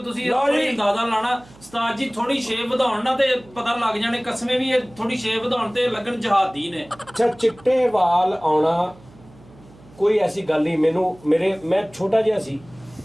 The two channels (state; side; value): noise; right; hum, 24 dB below the sound